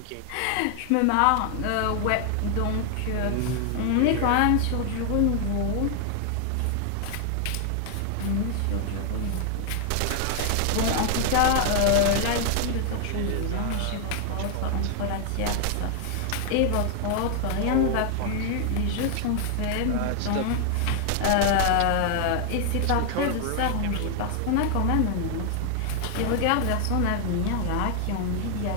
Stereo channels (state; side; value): different; both; correlation 0.00